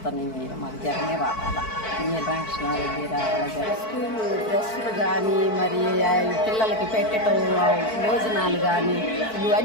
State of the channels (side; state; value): right; late; 4.6 ms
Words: మాకు జగనే రావాలా, పిన్నెల్లి రామకృష్ణారెడ్డి రావాలా. స్కూలు డ్రెస్సులు కానీ, మరి పిల్లలకి పెట్టడం భోజనాలు కానీ